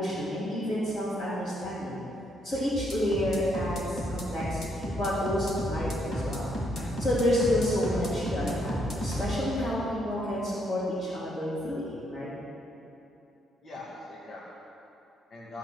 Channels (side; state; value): both; normal; correlation 0.73